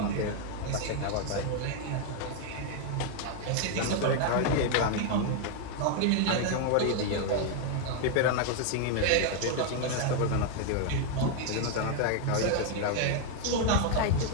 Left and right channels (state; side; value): different; both; correlation 0.01